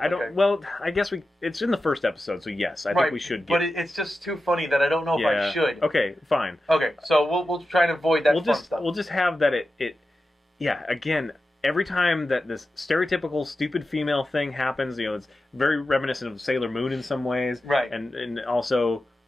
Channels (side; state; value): both; normal; correlation 0.92